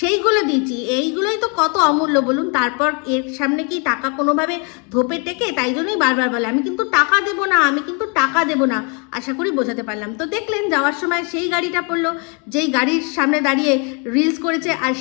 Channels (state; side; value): quieter; right; 34.7 dB